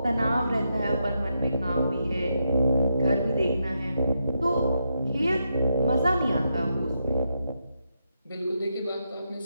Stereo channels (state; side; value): inverted; both; correlation -0.83